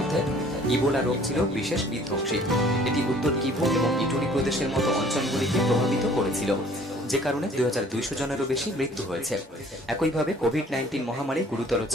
ইবোলা রোগ ছিল বিশেষ বিধ্বংসী। এটি উত্তর কিভু এবং ইটুরি প্রদেশের মতো অঞ্চলগুলিকে প্রভাবিত করেছিল, যে কারণে 2200 জনেরও বেশি মৃত্যু হয়েছে। একইভাবে কোভিড-19 মহামারী গুরুতর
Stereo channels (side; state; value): both; normal; correlation 0.54